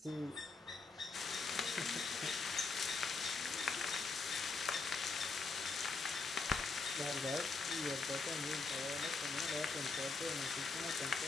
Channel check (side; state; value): right; quieter; 4.1 dB